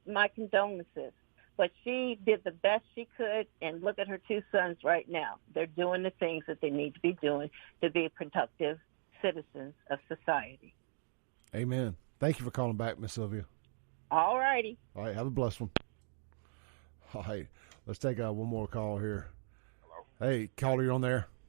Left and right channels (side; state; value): left; silent; 53 dB below the other